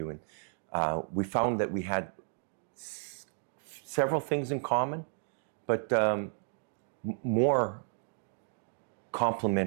and we found that we had several things in common, but more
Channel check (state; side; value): silent; left; 56 dB below the other